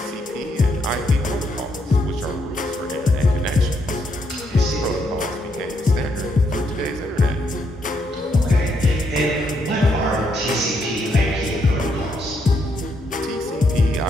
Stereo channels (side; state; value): both; normal; correlation 0.76